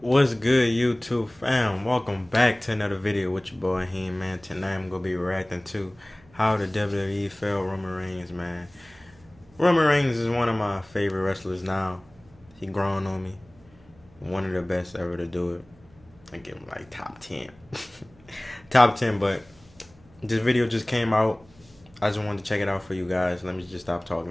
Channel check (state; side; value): noise; right; hum, 27 dB below the sound